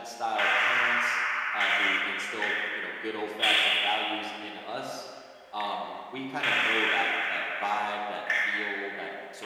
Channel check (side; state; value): both; identical; correlation 1.00